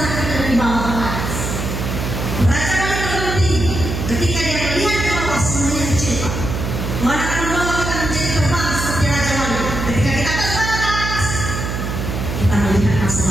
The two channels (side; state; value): right; noise; hum, 4 dB below the sound